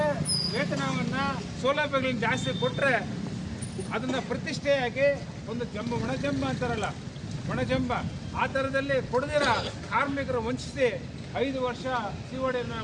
ವೇತನವನ್ನು ಸೌಲಭ್ಯಗಳನ್ನ ಜಾಸ್ತಿ ಕೊಟ್ಟರೆ ಅದನ್ನು ಪ್ರತಿಷ್ಠೆಯಾಗಿ ಒಂದು ಒಣಜಂಬ ಅಂತಾರಲ್ಲ, ಒಣಜಂಬ ಆ ಥರದಲ್ಲಿ ಕೊಡದಿರ ಕಾರ್ಮಿಕರು ವಂಚಿಸಿ 5 ವರ್ಷ CODಯನ್ನು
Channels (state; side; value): identical; both; correlation 1.00